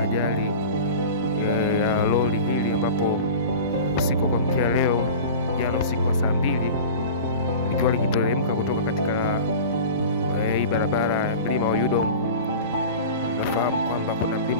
ajali ya lori hili, ambapo usiku kwa mkia leo jana usiku wa saa 2 likiwa likiteremka kutoka katika hii barabara ya mlima wa Yudom. Nafahamu kwamba kuna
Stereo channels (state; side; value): inverted; both; correlation -0.34